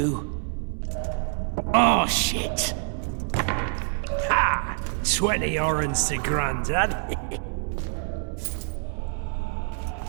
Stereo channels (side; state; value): left; silent; 61 dB below the other